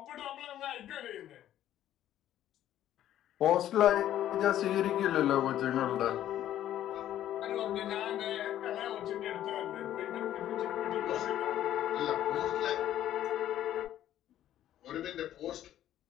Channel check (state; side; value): quieter; right; 12.1 dB